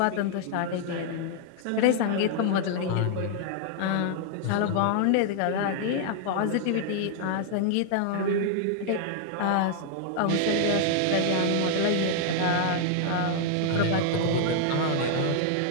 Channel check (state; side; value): different; both; correlation -0.01